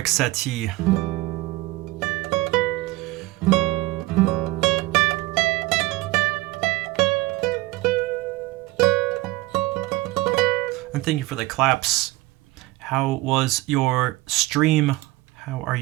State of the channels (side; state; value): left; quieter; 19.8 dB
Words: Satie. And thank you for the claps. How was your stream? How are